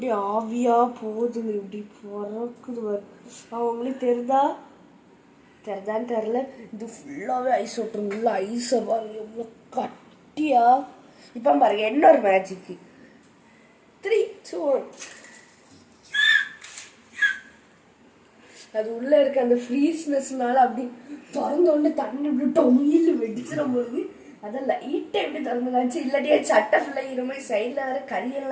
ஆவியாக போகுதுங்க, இப்படி பறக்குது. அவங்களுக்கு தெரிதான்னு தெரில. இது ஃபுல்லாகவே ஐஸ் வாட்டர், ஃபுல்லாக ஐஸை பாருங்க எவ்வளோ கட்டியா. இப்போ பாருங்க இன்னொரு மேஜிக்கு. 3, 2, 1. அது உள்ள இருக்க அந்த ஃப்ரீஸ்னஸ்னால அப்படி திறந்தோடனே தண்ணி இப்படி டொயில் வெடிச்சிட போகுது. அதான் லைட்டை எப்படி திறந்து காமிச்சு, இல்லாட்டியே சட்டை ஃபுல்லாக இது மாதிரி சைடில் வேற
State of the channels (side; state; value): both; identical; correlation 1.00